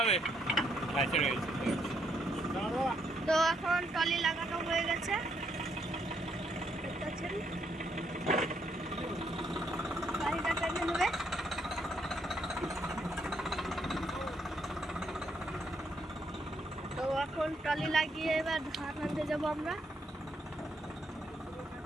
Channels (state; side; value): normal; both; correlation 0.74